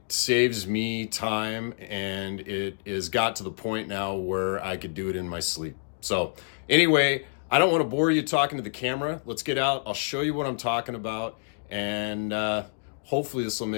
saves me time, and it has got to the point now where I could do it in my sleep. So anyway, I don't want to bore you talking to the camera. Let's get out. I'll show you what I'm talking about, and hopefully this will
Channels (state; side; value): silent; right; digital silence